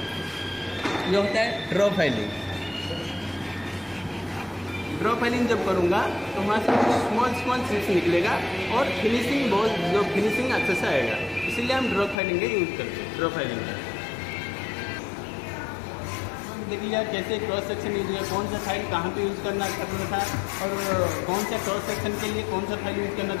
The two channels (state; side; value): drops out; right; at 12.2 s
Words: ये होता है ड्रॉ फाइलिंग। ड्रॉ फाइलिंग जब करूँगा तो वहाँ से स्मॉल चिप्स निकलेगा और फिनिशिंग जो फिनिशिंग अच्छे से आएगा। इसीलिए हम ड्रॉ फाइलिंग का यूज़ करते हैं। ड्रॉ फाइलिंग का देखिए कैसे क्रॉस सेक्शन यूज है, कौन सा फाइल कहाँ पे यूज़ करना था, और कौन सा क्रॉस सेक्शन के लिए कौन सा फाइल यूज़ करना